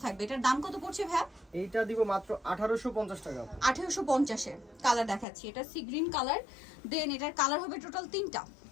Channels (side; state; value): right; drops out; at 5.2 s